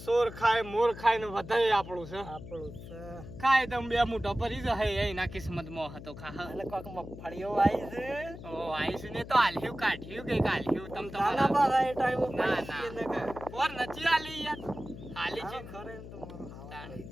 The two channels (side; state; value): left; noise; hum, 13 dB below the sound